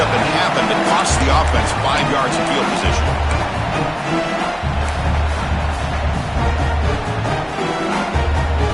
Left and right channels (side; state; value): both; identical; correlation 1.00